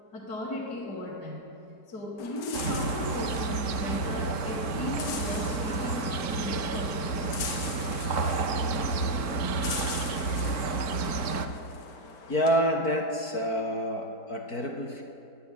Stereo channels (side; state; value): right; late; 4.5 ms